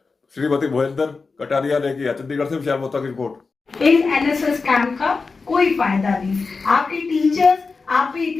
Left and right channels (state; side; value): quieter; right; 4.4 dB